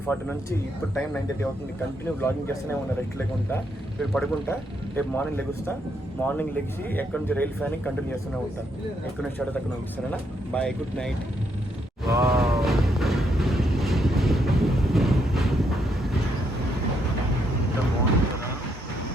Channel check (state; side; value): normal; both; correlation 0.76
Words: నుంచి ఇప్పుడు టైం 9:30 అవుతుంది. కంటిన్యూ బ్లాగింగ్ చేస్తూనే ఉన్నా రెస్ట్ లేకుండా. ఇప్పుడు పడుకుంటా, రేపు మార్నింగ్ లెగుస్తా. మార్నింగ్ లెగిసి ఎక్కడి నుంచి రైల్ ఫ్యానింగ్ కంటిన్యూ చేస్తూనే ఉంటా. ఎక్కడి నుంచి స్టార్ట్ అక్కడ నుంచి. సరేనా? Bye, good night.